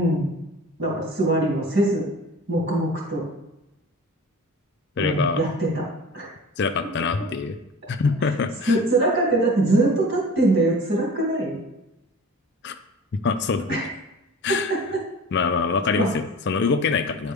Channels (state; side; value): normal; both; correlation 0.39